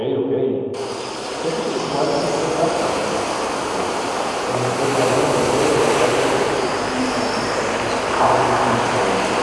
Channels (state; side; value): identical; both; correlation 1.00